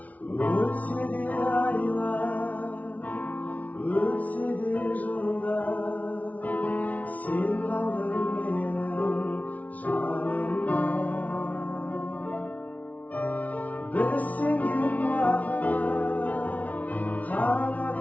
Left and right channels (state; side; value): late; right; 0.071 ms